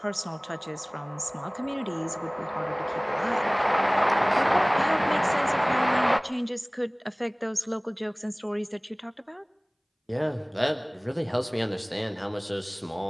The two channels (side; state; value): both; identical; correlation 1.00